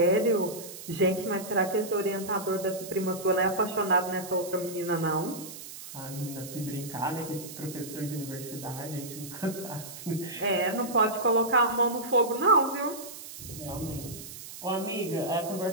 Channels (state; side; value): noise; right; hiss, 13 dB below the sound